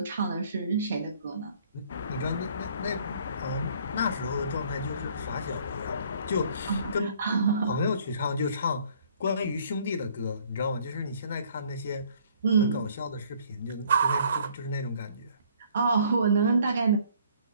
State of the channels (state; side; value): inverted; both; correlation -0.59